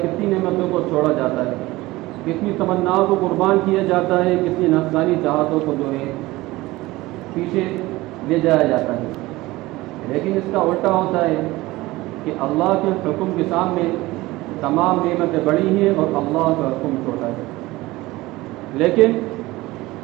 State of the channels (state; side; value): quieter; left; 19.4 dB